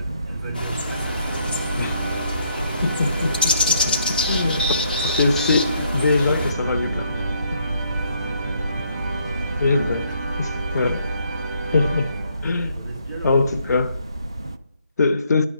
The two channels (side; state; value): both; inverted; correlation -0.71